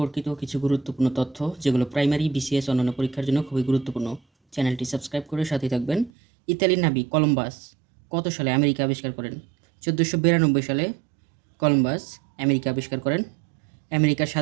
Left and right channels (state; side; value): drops out; left; at 6.1 s